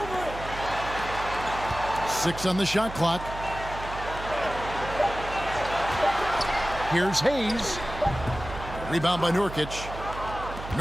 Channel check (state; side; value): noise; right; hum, 10 dB below the sound